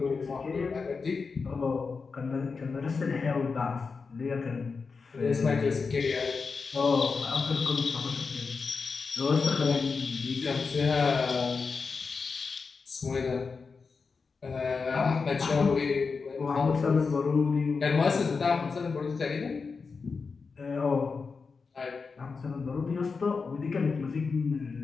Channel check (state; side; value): quieter; right; 4.8 dB